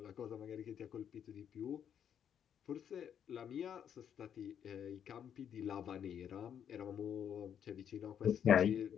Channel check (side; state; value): right; quieter; 8.7 dB